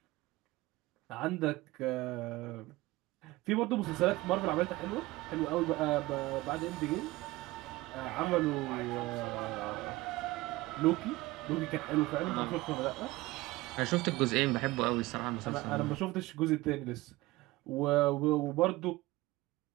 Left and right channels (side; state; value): left; quieter; 19.8 dB